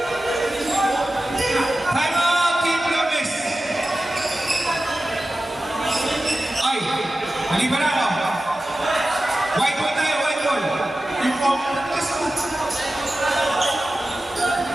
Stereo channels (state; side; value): normal; both; correlation 0.94